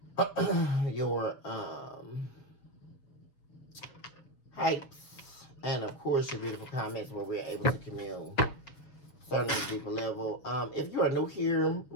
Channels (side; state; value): right; late; 7.2 ms